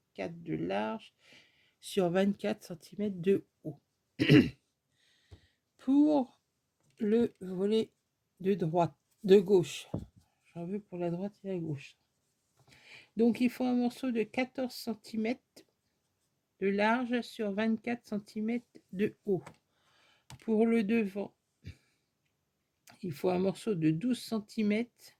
4 de large sur 24 cm de haut. Pour le volet de droite, de gauche, j'en veux pour la droite et la gauche. Donc il faut un morceau de 14 cm de large sur 24 cm de haut. Pour le devant, il faut un morceau de 12 cm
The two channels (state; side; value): identical; both; correlation 1.00